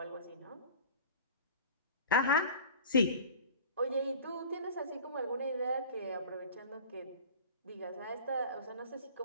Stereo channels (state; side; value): inverted; both; correlation -0.41